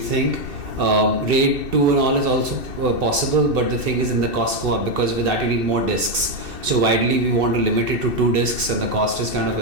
RAID 2 and all is also possible, but the thing is, in the cost go up, because with that you need more disks. So widely we want to limit it to 2 disks, and the cost is kind of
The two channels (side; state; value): left; late; 2.7 ms